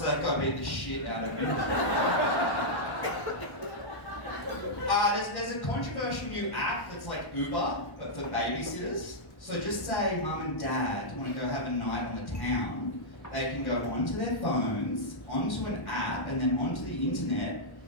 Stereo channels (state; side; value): late; right; 1.0 ms